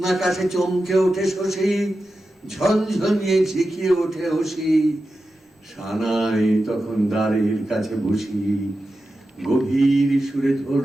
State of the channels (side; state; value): both; normal; correlation 0.91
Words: চমকে ওঠে শশী, ঝনঝনিয়ে ঝিকিয়ে ওঠে হসি। সানাই তখন দ্বারের কাছে বসি, গভীর সুরে